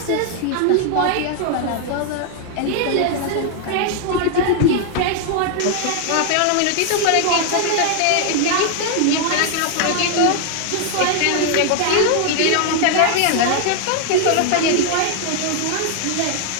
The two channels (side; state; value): both; different; correlation 0.00